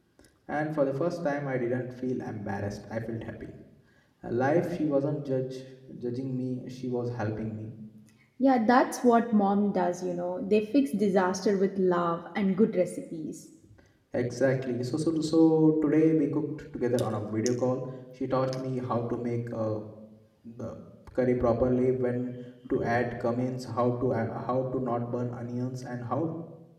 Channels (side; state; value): both; identical; correlation 1.00